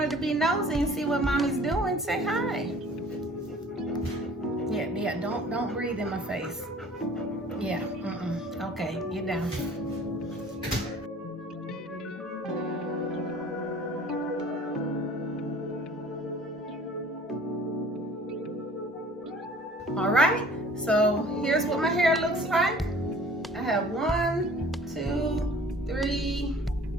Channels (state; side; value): normal; both; correlation 0.49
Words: to be nosy and see what mommy's doing. Say hi. Yeah, don't breathe in my face. Yeah, okay, get down. All right, so here's what my hair looks like. I have 1, 2, 3,